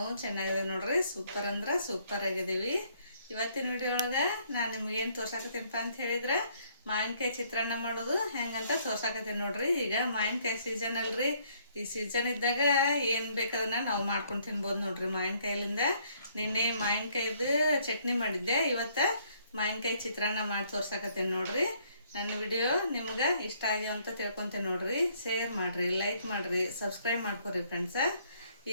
ಚೆನ್ನಾಗಿದೆ ನೋಡ್ರಿ, ಸೂಪರ್ ಅಂದ್ರೆ ಸೂಪರ್ ಆಗಿದ್ದೀವಿ. ಇವತ್ತಿನ ವಿಡಿಯೋ ಒಳಗೆ ನಾನು ನಿಮ್ಗೇನು ತೋರ್ಸಾಕತ್ತೀನಪ್ಪ ಅಂತ ಹೇಳಿದ್ರೆ ಮಾವಿನಕಾಯಿ ಚಿತ್ರಾನ್ನ ಮಾಡೋದು ಹೆಂಗಂತ ತೋರ್ಸಾಕತ್ತೀನಿ ನೋಡ್ರಿ. ಈಗ ಮಾವಿನಕಾಯಿ ಸೀಸನ್ ಅಲ್ರಿ, ಈ ಸೀಸನ್ ಇದ್ದಾಗ ಏನು ಬೇಕಾದನ್ನ ನಾವು ಮಾಡ್ಕೊಂಡು ತಿನ್ಬೋದು ನೋಡ್ರಿ ಮಾವಿನಕಾಯಿಲಿಂದ. ನಿನ್ನೆ ಮಾವಿನಕಾಯಿದು ಚಟ್ನಿ ಮಾಡಿದ್ದೆ, ಇವತ್ತು ಮಾವಿನಕಾಯಿ ಚಿತ್ರಾನ್ನ ಮಾಡಿ ತೋರ್ಸಾಕತ್ತೀನಿ ನೋಡ್ರಿ. ನನ್ನ ವಿಡಿಯೋ ನಿಮ್ಗೆ ಇಷ್ಟ ಆಗ್ಯಾವ ಅಂತ ತಿಳ್ಕೊತೇನೆ ನೋಡ್ರಿ. ಶೇರ್ ಮಾಡಿರಿ, ಲೈಕ್ ಮಾಡಿರಿ, ಸಬ್ಸ್ಕ್ರೈಬ್ ಮಾಡ್ಕೊರಿ ಫ್ರೆಂಡ್ಸ.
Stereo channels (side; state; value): both; inverted; correlation -0.66